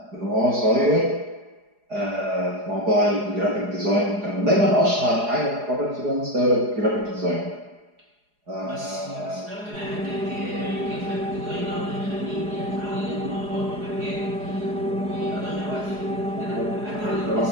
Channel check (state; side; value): late; left; 4.8 ms